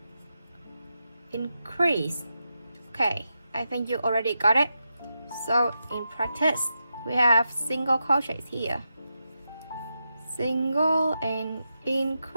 increase. Okay, I think you already got it. So in practice, we have single crochets here, single and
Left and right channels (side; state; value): both; inverted; correlation -0.88